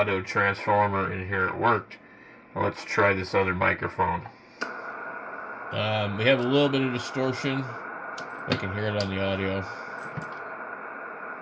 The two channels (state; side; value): identical; both; correlation 1.00